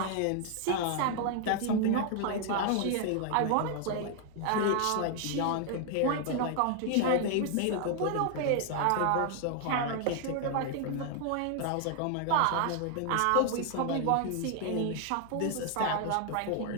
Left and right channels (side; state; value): both; different; correlation 0.00